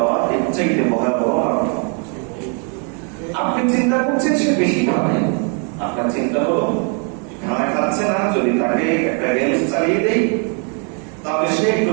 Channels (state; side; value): quieter; left; 39.1 dB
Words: এর চাইতে ভয়াবহ মারাত্মক। আপনি চিন্তা করছেন সে বেশি খাবে, আপনার চিন্তা হলো খানা খাচ্ছে না, যদি তাকে একটা গেমস চালিয়ে দেই তাহলে সে একটু